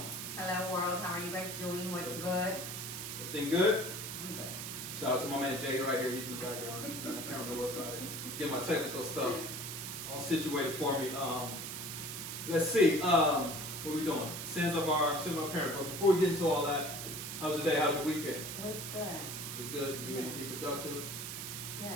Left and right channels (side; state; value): right; noise; hiss, 6 dB below the sound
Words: Hello, world. How are you guys doing? What's good? Everything good? I'm good. Shout out to my man Jay right here. He's in the background. I can't remember about it. He's getting my technical stuff all situated for me. Let's see. What we doing? Sins of our parents. But before we get into all that, how's your day? How's your weekend? It was good. It was good. Do anything productive?